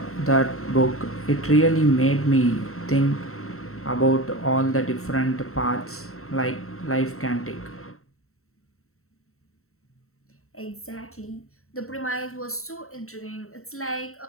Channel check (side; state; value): right; late; 0.63 ms